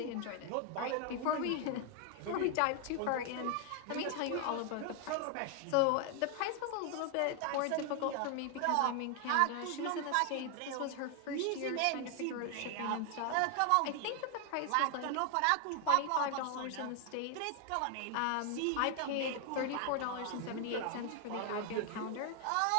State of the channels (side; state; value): both; different; correlation 0.00